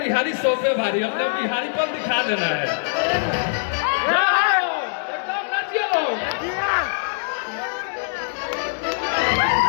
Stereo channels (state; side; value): silent; right; 63 dB below the other